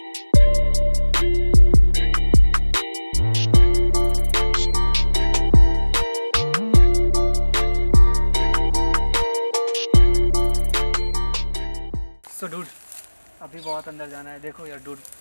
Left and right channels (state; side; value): inverted; both; correlation -1.00